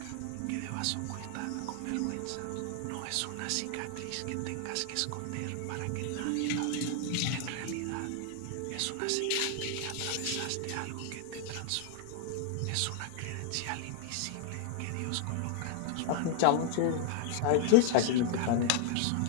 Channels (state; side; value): different; both; correlation 0.00